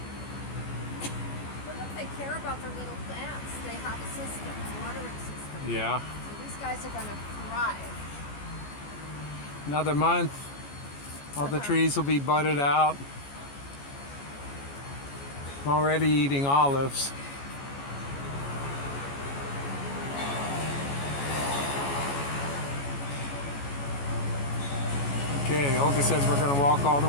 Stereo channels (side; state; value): right; late; 14 ms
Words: But look, they care about their little plants. They have a system, a watering system. Yeah. So these guys are going to thrive. Another month, all the trees will be budded out. I'm already eating olives. Okay, Olga says we're going to walk all the